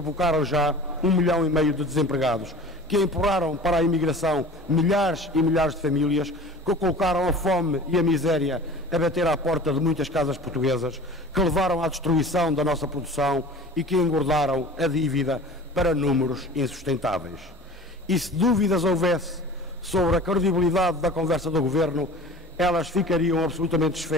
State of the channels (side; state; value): both; normal; correlation 0.40